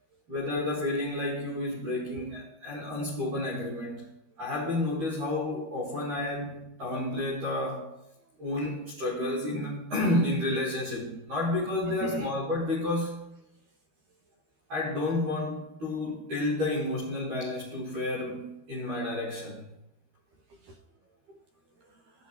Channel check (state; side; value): late; left; 13 ms